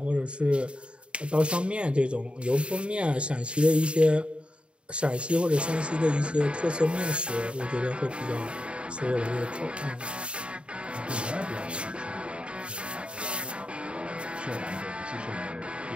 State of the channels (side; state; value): left; late; 0.057 ms